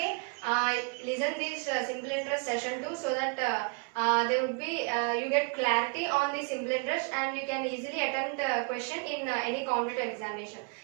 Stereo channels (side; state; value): left; quieter; 34.2 dB